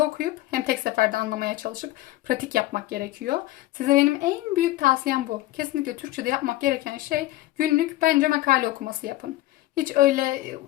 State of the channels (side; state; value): right; quieter; 16.7 dB